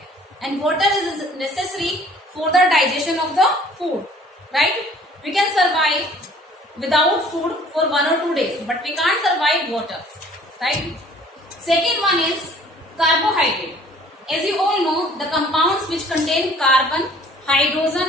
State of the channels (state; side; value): normal; both; correlation 0.54